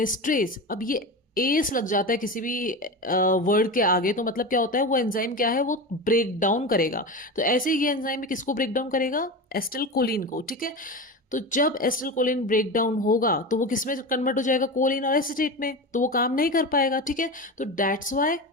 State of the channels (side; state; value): both; normal; correlation 0.24